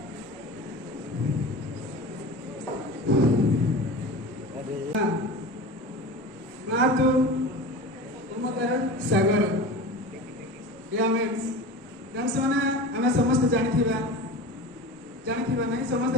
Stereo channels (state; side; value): normal; both; correlation 0.32